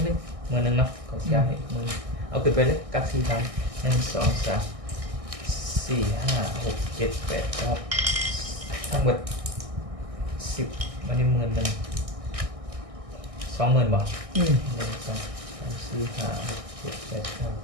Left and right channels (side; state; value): left; late; 1.6 ms